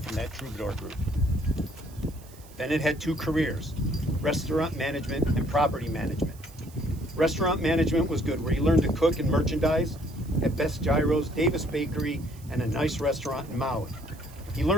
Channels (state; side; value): noise; right; hiss, 23 dB below the sound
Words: from that troubadour group. Bennett had 2 careers, restaurant management and property management. Restaurant management was good, where he learned to cook and merchandise at Best Gyros, Davis Bakery, and a nice restaurant in Maui. He